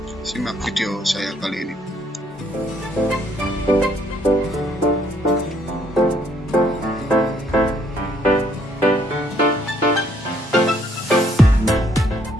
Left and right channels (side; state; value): both; normal; correlation 0.67